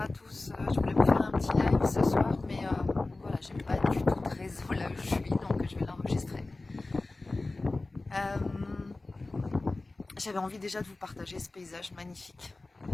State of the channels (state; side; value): quieter; right; 3.2 dB